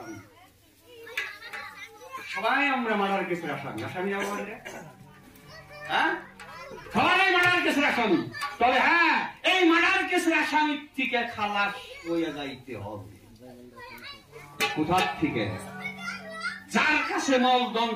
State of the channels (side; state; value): both; identical; correlation 1.00